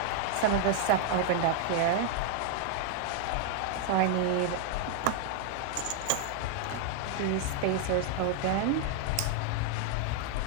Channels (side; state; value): both; different; correlation 0.00